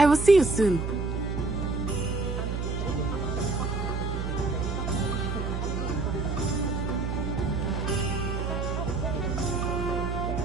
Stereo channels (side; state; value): right; noise; hum, 2 dB below the sound